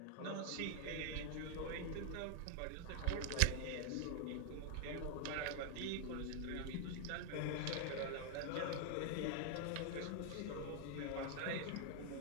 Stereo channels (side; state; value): both; different; correlation 0.00